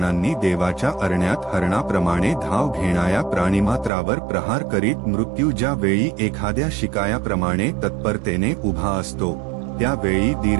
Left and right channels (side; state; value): left; drops out; at 3.9 s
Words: देवाच्या अरण्यात हरणाप्रमाणे धाव घेणाऱ्या प्राणिमात्रावर प्रहार करीत मृत्यू ज्या वेळी एखाद्या शिकायाप्रमाणे तत्परतेने उभा असतो, त्यावेळी